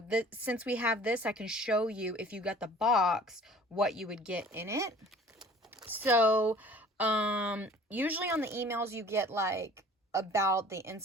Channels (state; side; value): normal; both; correlation 0.48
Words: since we have this, I can show you, if you got the box, what you would get in it. So usually on the emails you get about the